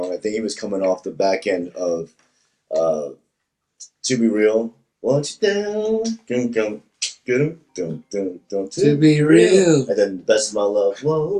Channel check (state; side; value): identical; both; correlation 1.00